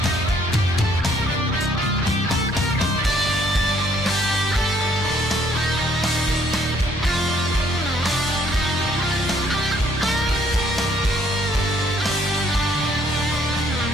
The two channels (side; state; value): both; normal; correlation 0.65